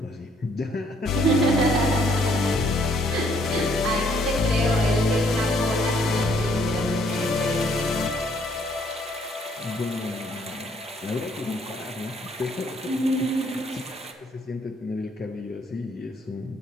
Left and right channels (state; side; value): normal; both; correlation 0.66